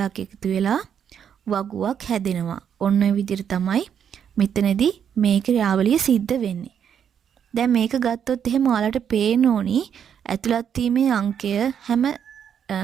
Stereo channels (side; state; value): left; quieter; 8.3 dB